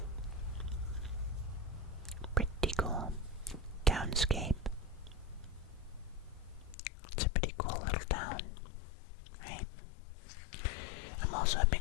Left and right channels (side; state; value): right; drops out; at 6.8 s